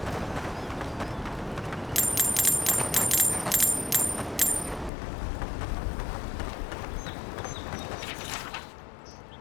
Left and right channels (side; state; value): right; drops out; at 4.9 s